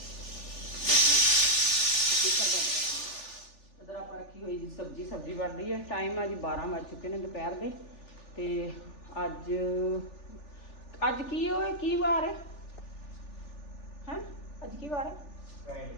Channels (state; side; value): late; right; 3.4 ms